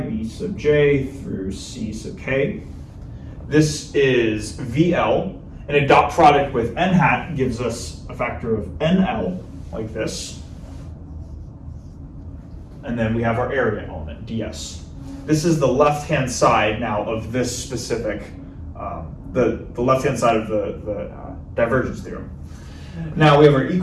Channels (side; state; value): both; identical; correlation 1.00